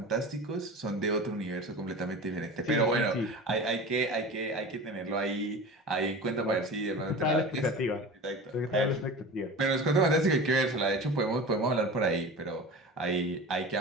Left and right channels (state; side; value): normal; both; correlation 0.33